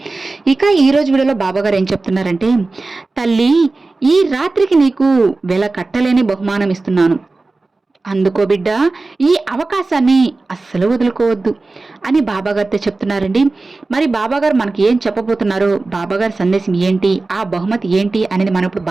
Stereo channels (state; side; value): quieter; left; 3.4 dB